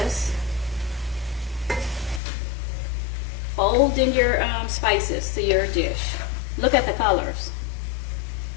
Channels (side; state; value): right; drops out; at 2.2 s